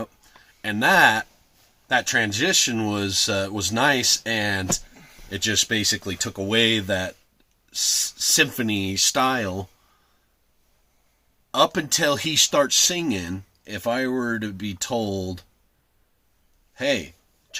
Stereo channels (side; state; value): both; identical; correlation 1.00